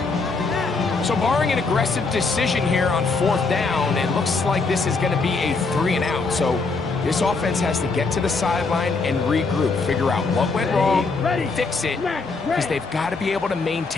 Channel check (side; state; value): right; quieter; 4.1 dB